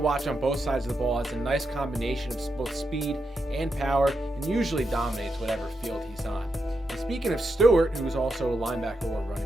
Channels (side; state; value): both; normal; correlation 0.85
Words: on both sides of the ball. Has a nice combination of both speed and power, and usually dominates whatever field he's on. And speaking of Stewart, who's also a linebacker or